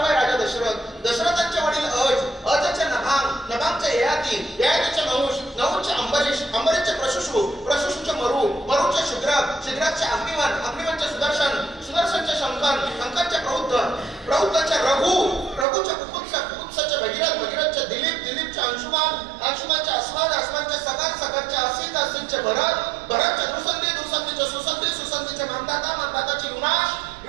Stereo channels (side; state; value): left; drops out; at 15.7 s